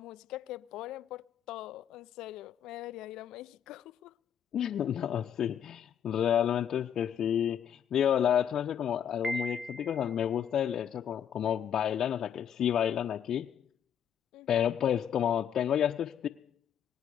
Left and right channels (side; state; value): right; quieter; 9.0 dB